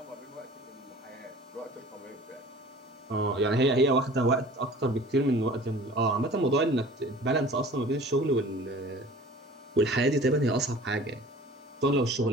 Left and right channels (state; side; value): normal; both; correlation 0.45